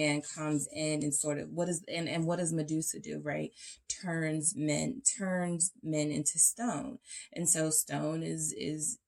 comes in and sort of, what does Medusa do, right? Turns men into stone. And so stone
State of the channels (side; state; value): both; identical; correlation 1.00